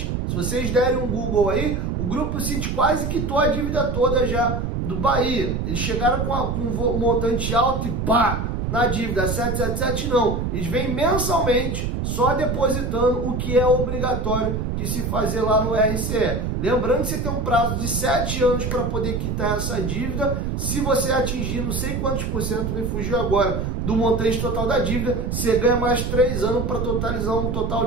Se vocês derem um Google aí, o Grupo City quase quitou a dívida toda já do Bahia. Eles chegaram com um montante alto e pá! Na dívida. 777 não. Eles vêm mensalmente só depositando o que é obrigatório de se fazer lá no RCE. Lembrando que você tem um prazo de 7 anos para poder quitar essa dívida. Se você atingir não sei quantos por cento, me fugiu agora, do montante total da dívida, você ganha mais 3 anos para totalizar um total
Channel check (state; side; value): noise; right; rumble, 1 dB below the sound